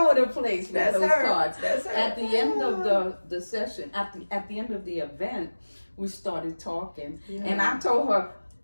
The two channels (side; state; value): both; inverted; correlation -1.00